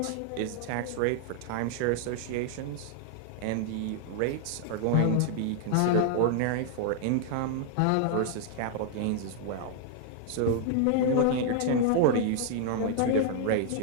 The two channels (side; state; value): both; different; correlation 0.00